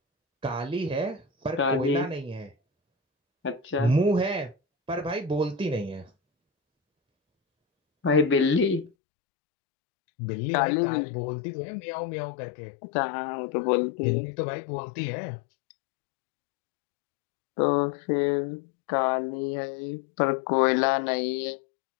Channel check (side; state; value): right; drops out; at 8.9 s